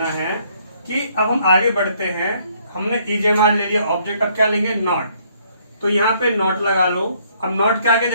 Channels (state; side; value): inverted; both; correlation -0.66